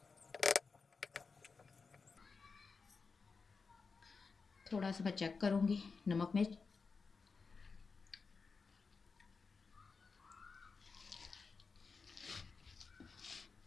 थोड़ा सा मैं चेक करूँगी नमक में।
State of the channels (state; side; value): quieter; right; 4.7 dB